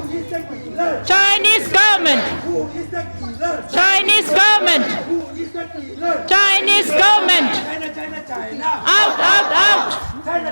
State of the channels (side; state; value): both; inverted; correlation -1.00